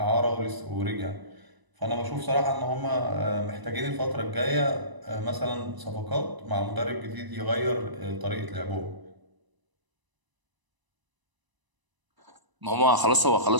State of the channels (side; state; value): left; late; 1.0 ms